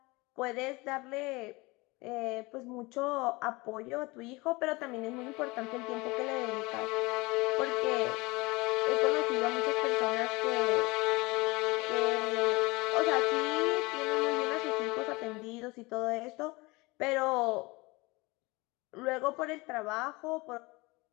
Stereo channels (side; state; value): right; quieter; 23.9 dB